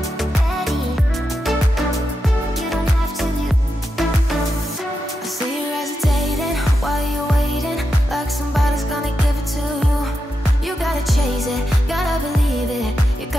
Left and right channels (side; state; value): both; normal; correlation 0.87